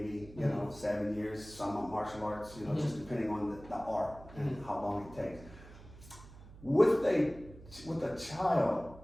you know, 7 years, some of martial arts, you know, just depending on the art and how long it takes. With a child,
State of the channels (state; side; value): noise; right; hum, 18 dB below the sound